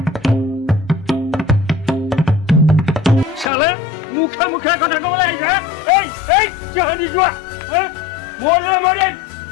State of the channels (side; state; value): right; drops out; at 3.5 s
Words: চালে মুখে মুখে কথা ক'বলৈ আহিছে এই এই চাহানি যোৱা মৰিলে মৰিম